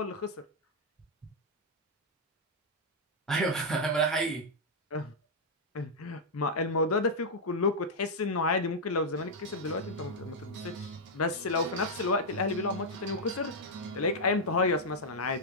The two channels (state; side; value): normal; both; correlation -0.03